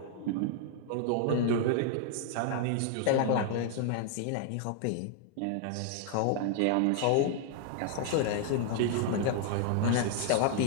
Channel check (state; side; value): different; both; correlation 0.00